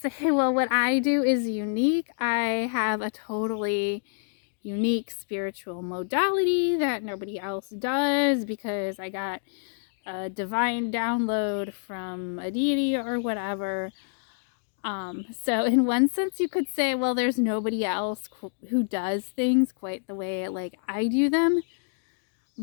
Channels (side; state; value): right; silent; digital silence